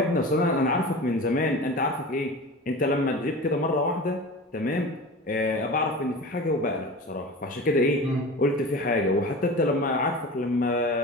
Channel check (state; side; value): normal; both; correlation 0.33